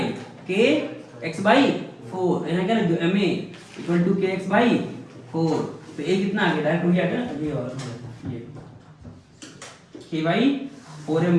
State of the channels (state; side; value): identical; both; correlation 1.00